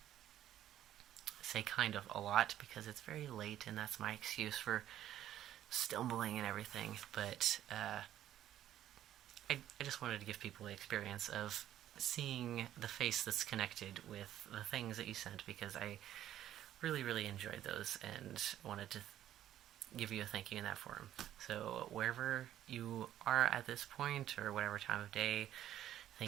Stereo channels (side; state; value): left; quieter; 12.0 dB